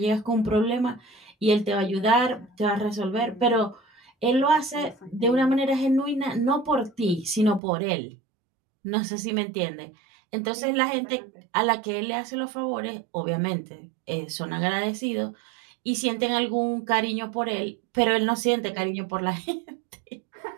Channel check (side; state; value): left; drops out; at 7.6 s